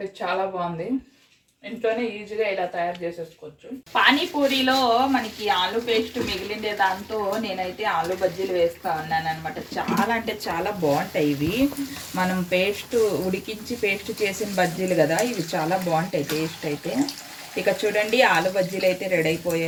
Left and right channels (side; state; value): both; identical; correlation 1.00